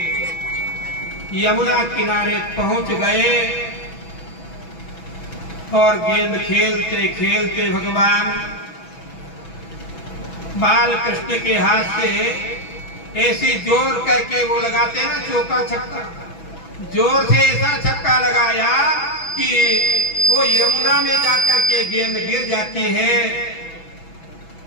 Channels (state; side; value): late; right; 6.1 ms